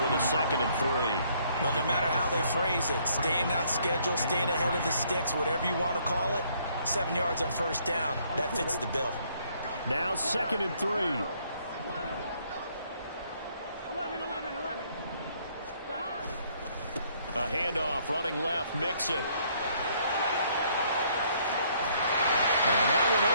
with a 2nd and 3. But no matter how they phrase it, staying on schedule, staying ahead of the sticks, whatever you want to call it, 7 yards on first down, that fits the bill. Now 2nd and 3. 11. A handoff running left, Mixon. And that one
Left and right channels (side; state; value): both; inverted; correlation -0.66